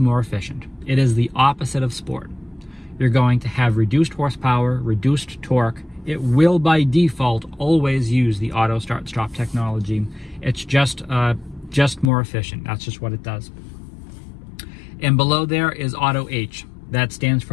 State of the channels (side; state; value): right; drops out; at 12.1 s